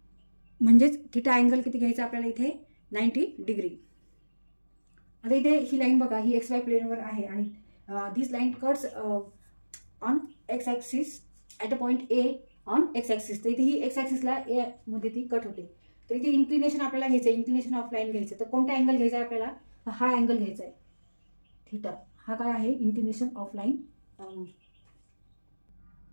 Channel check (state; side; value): inverted; both; correlation -1.00